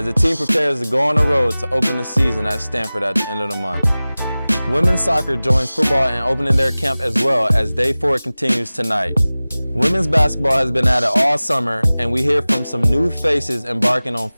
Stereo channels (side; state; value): both; inverted; correlation -0.98